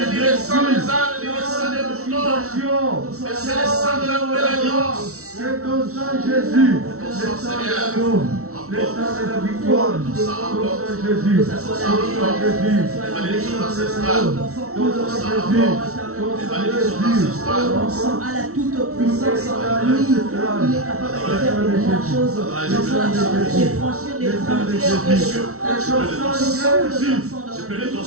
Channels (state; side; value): late; left; 0.63 ms